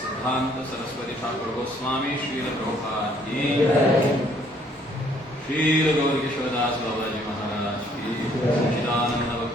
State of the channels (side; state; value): both; normal; correlation 0.63